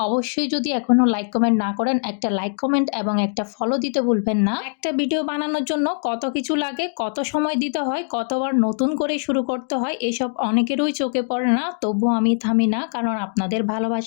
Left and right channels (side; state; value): right; silent; digital silence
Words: অবশ্যই যদি এখনো লাইক কমেন্ট না করেন, একটা লাইক কমেন্ট এবং একটা ফলো দিতে ভুলবেন না। একটা ভিডিও বানানোর জন্য কত কিছু লাগে, কত সময় দিতে হয়, কতবার নতুন করে শুরু করতে হয়, এসব অনেকেরই চোখে পড়ে না। তবু আমি থামি না, কারণ আপনাদের